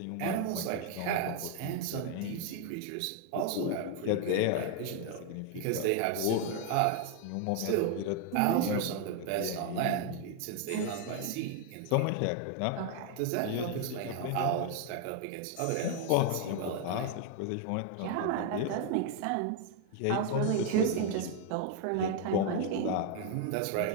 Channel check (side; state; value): both; different; correlation 0.00